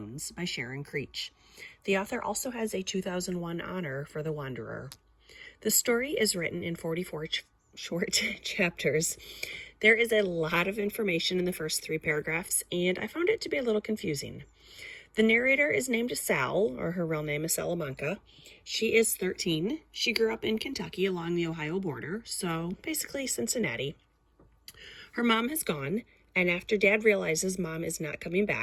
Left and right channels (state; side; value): identical; both; correlation 1.00